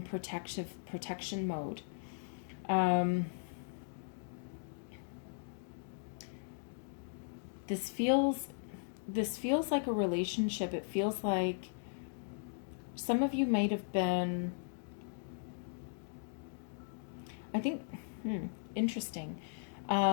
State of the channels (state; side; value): silent; right; digital silence